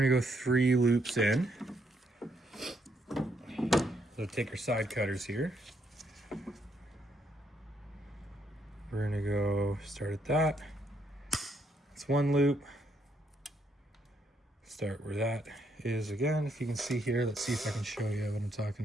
to go 3 loops in. So take our side cutters here. We're going to go start at that. It's 1 loop. Start where that is again. If you can see here, let's see if I can show you what I'm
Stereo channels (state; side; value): normal; both; correlation 0.74